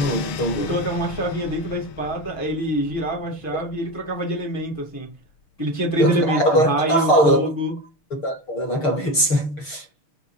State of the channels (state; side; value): late; right; 6.6 ms